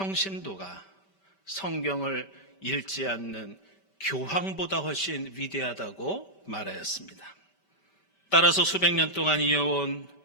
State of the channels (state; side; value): late; right; 5.1 ms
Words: 성경을 읽지 않는 교황보다 훨씬 위대하다고 말하였습니다. 따라서 수백 년 동안 이어온